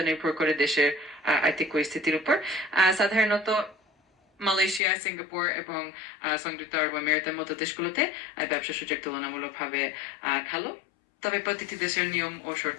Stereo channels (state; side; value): drops out; right; at 4.8 s